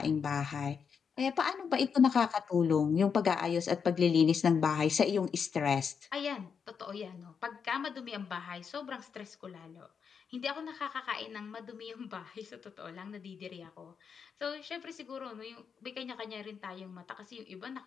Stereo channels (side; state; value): right; quieter; 6.5 dB